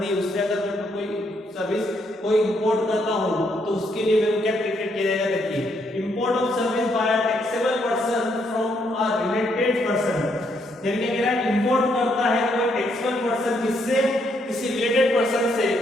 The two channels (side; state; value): both; normal; correlation 0.74